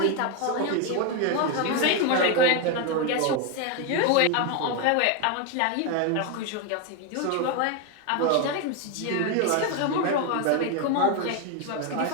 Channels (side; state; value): both; different; correlation 0.02